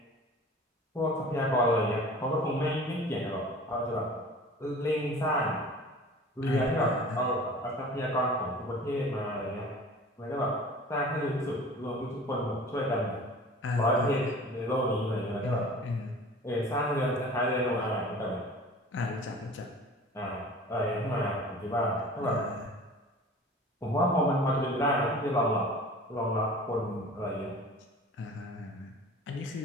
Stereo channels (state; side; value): normal; both; correlation 0.42